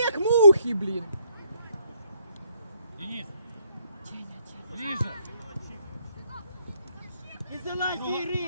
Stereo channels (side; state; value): both; inverted; correlation -0.70